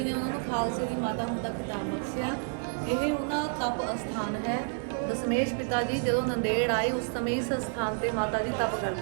ਨੇ ਉਹਨਾਂ ਨੂੰ ਖਾਲਸੇ ਦੀ ਮਾਤਾ ਹੋਣ ਦਾ ਖਿਤਾਬ ਬਖਸ਼ਿਆ। ਇਹ ਉਹਨਾਂ ਤਪ ਅਸਥਾਨ ਹੈ। ਦਸ਼ਮੇਸ਼ ਪਿਤਾ ਜੀ ਜਦੋਂ ਨੰਦੇੜ ਆਏ ਉਸ ਸਮੇਂ ਇਸ ਸਥਾਨ ਤੇ ਮਾਤਾ ਜੀ ਤਪ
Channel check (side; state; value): left; silent; 58 dB below the other